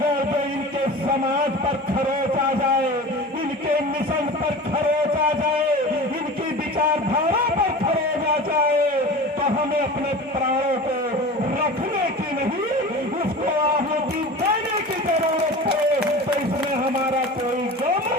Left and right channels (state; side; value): normal; both; correlation 0.35